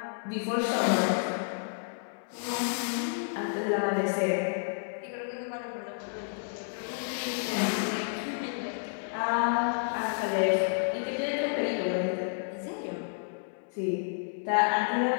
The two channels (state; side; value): silent; right; 57 dB below the other